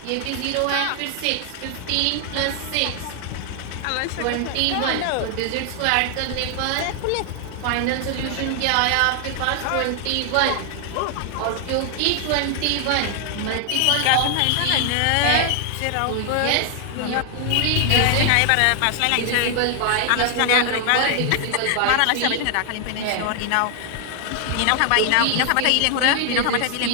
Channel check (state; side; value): different; both; correlation 0.00